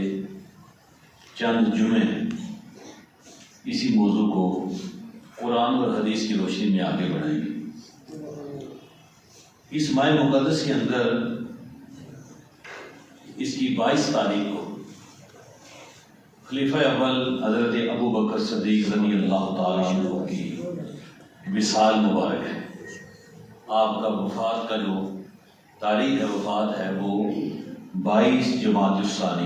چند جمعے اسی موضوع کو قرآن اور حدیث کی روشنی میں آگے بڑھائیں گے. اس ماہ مقدس کے اندر اس کی 22 تاریخ کو خلیفہ اول حضرت ابو بکر صدیق رضی اللہ تعالیٰ عنہ کی وصال مبارک ہے. آپ کا وفات کا جو تاریخ ہے وفات ہے وہ 22 جمادی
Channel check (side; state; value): both; identical; correlation 1.00